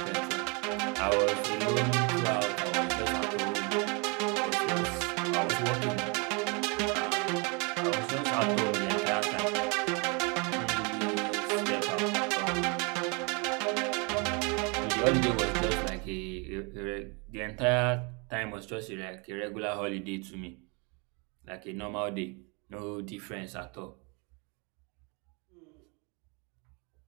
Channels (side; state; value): left; quieter; 31.9 dB